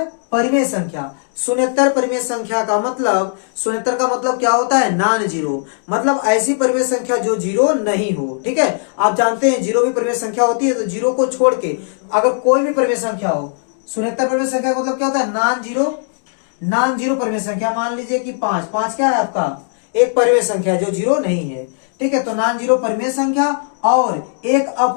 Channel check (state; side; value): silent; right; digital silence